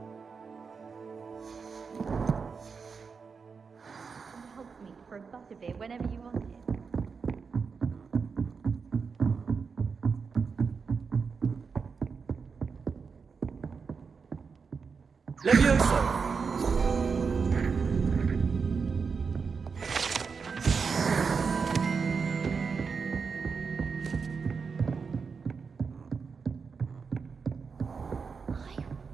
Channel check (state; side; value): quieter; left; 5.4 dB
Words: Hogsmeade for a butterbeer whenever you want it. Levioso!